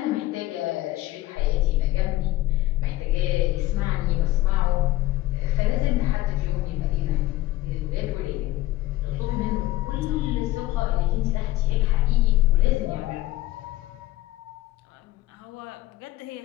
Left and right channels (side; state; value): right; quieter; 16.7 dB